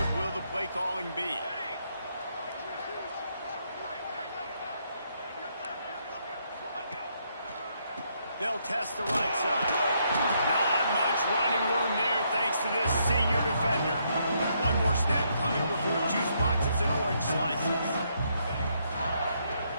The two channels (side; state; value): both; inverted; correlation -0.75